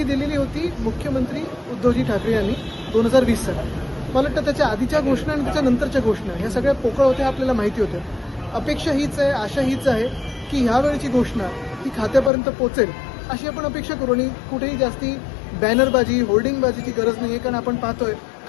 दिलेली होती मुख्यमंत्री उद्धवजी ठाकरे यांनी 2020 साली. मला वाटतं त्याच्या आधीच्या घोषणा आणि त्याच्या नंतरच्या घोषणा ह्या सगळ्या पोकळ होत्या, आपल्याला माहिती होत्या. अपेक्षा हीच आहे, आशा हीच आहे की ह्यावेळची घोषणा ही खात्यापर्यंत पोहोचेल अशी आपण अपेक्षा करू. आणि कुठेही जास्ती बॅनरबाजी होर्डिंगबाजीची गरज नाही आहे, कारण आपण पाहतोय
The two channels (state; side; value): drops out; right; at 12.3 s